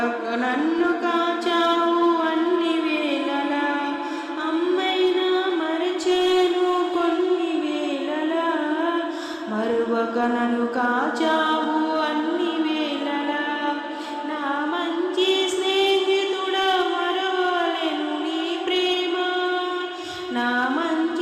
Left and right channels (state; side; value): identical; both; correlation 1.00